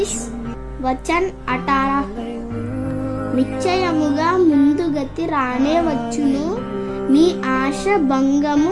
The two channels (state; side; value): identical; both; correlation 1.00